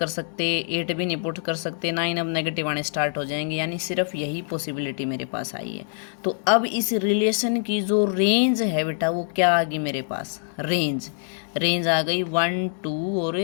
सकते, 8 भी नहीं पुट कर सकते, 9 अब नेगेटिव आने स्टार्ट हो जाएंगे, यानी सिर्फ यही पॉसिबिलिटी मेरे पास आई है। तो अब इस रिलेशन की जो रेंज है बेटा वो क्या आ गई मेरे पास, रेंज आ गई 1 2 और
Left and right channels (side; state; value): right; silent; digital silence